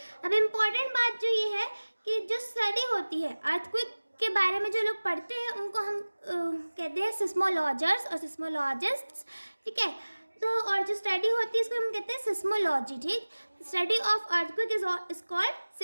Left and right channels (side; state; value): both; inverted; correlation -1.00